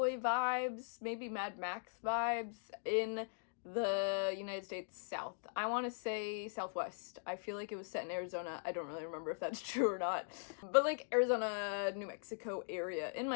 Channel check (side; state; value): right; silent; digital silence